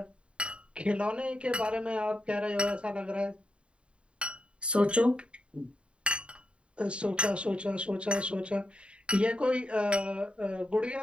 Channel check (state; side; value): late; left; 0.057 ms